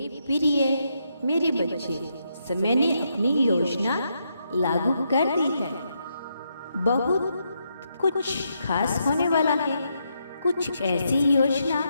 प्रिय मेरे बच्चे, समय ने अपनी योजना लागू कर दी है। बहुत कुछ खास होने वाला है। कुछ ऐसी योजना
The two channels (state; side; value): inverted; both; correlation -0.80